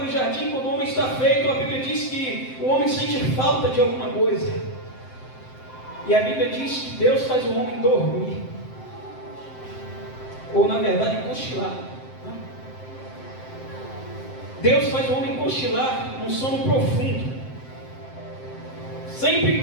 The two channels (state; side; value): late; right; 7.7 ms